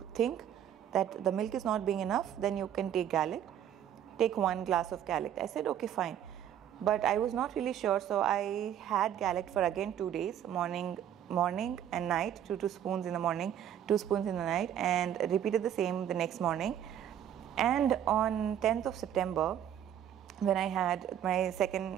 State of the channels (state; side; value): quieter; left; 10.2 dB